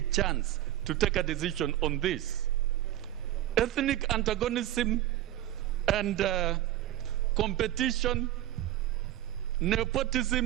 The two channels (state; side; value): quieter; left; 13.5 dB